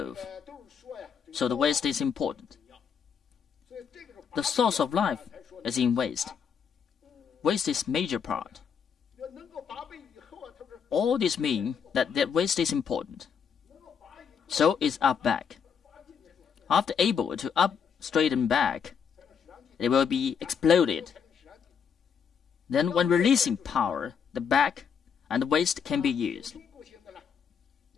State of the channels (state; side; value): quieter; right; 7.0 dB